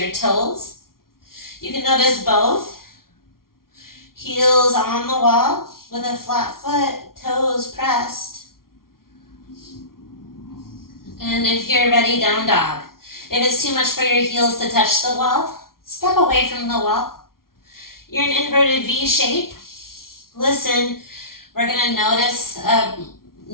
toes. You can notice both. Heels on the wall with a flat foot, toes pressed. And if you're ready, down dog. If it's too much for your heels to touch the wall, step away from the wall. You're in inverted V shape. Listen, we're going to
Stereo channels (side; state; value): right; late; 0.93 ms